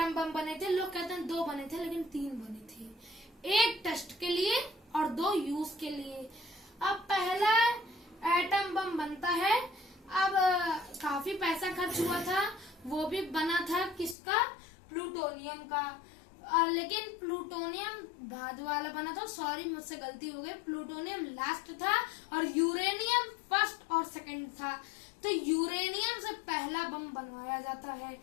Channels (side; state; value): right; drops out; at 14.2 s